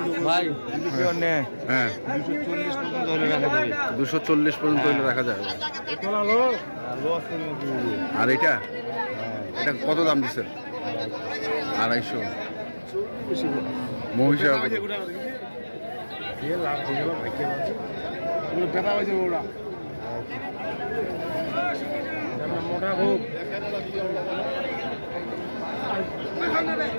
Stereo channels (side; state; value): both; inverted; correlation -1.00